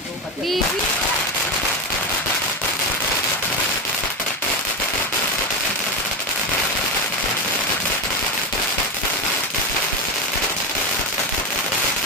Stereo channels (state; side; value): normal; both; correlation 0.15